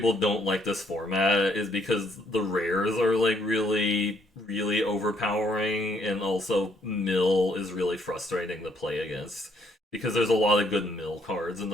don't like this format is because the rares are like really overpowering, and also mill is really frustrating to play against because there's a lot of good mill cards in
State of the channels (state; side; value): normal; both; correlation 0.69